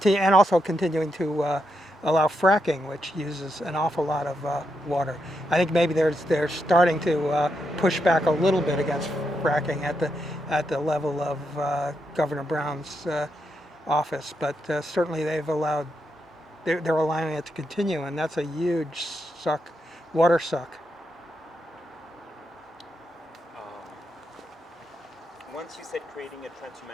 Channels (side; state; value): both; normal; correlation 0.83